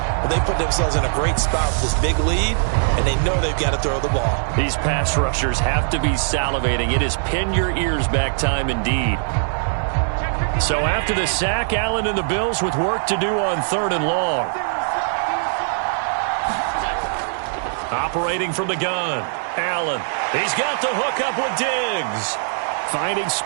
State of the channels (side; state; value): left; silent; digital silence